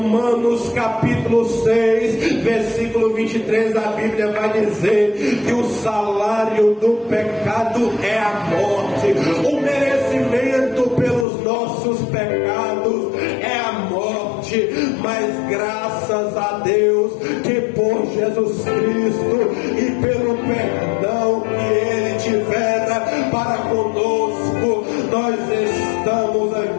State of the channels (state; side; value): drops out; right; at 11.2 s